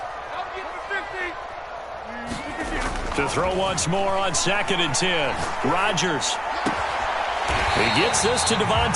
To throw once more on 2nd and 10. Rodgers. He gets this to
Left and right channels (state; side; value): identical; both; correlation 1.00